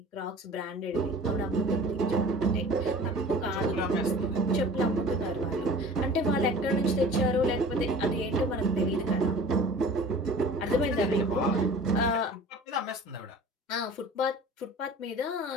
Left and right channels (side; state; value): both; normal; correlation 0.43